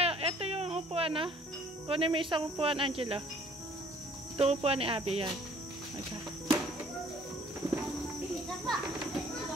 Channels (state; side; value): normal; both; correlation 0.57